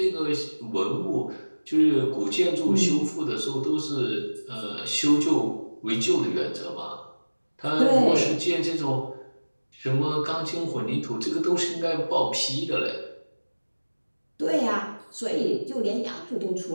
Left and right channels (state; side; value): inverted; both; correlation -1.00